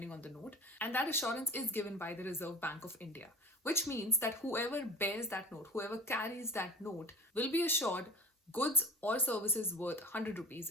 on the note, and that assurance is given by the Reserve Bank of India, which means that whoever bears that note, whoever carries that note will be assured goods or services worth 100 rupees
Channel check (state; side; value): normal; both; correlation 0.37